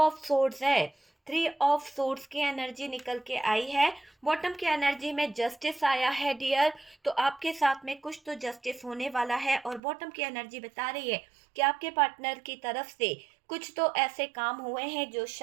सोर्ड्स है, 3 ऑफ सोर्ड्स की एनर्जी निकल के आई है। बॉटम की एनर्जी में जस्टिस आया है डियर, तो आपके साथ में कुछ तो जस्टिस होने वाला है। और बॉटम की एनर्जी बता रही है कि आपके पार्टनर की तरफ से कुछ तो ऐसे काम हुए हैं जो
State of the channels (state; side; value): drops out; left; at 9.8 s